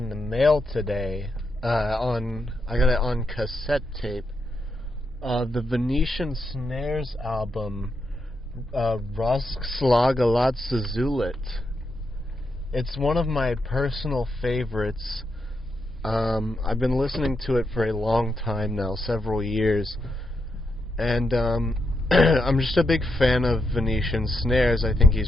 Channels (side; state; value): both; normal; correlation 0.83